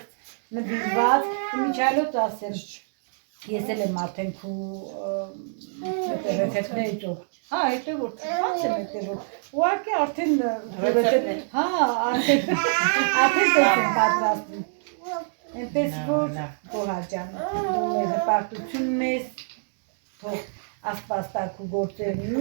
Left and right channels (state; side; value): silent; left; digital silence